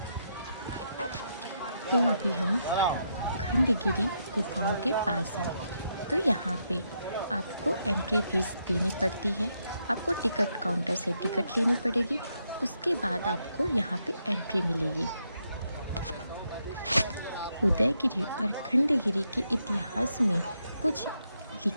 तो अभी हम खंडगिरी गुफाओं के पास हैं। तो यहाँ पे आपको एंट्री फीस देनी पड़ती है। आपको टिकट काउंटर से टिकट लेनी पड़ेगी, उसके बाद आपको यहाँ पे एंट्री मिलेगी। उदयगिरी और खंडगिरी के इतिहास में कुछ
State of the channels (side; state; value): both; inverted; correlation -0.80